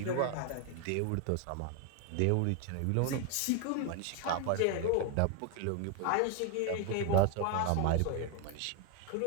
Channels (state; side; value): different; both; correlation 0.00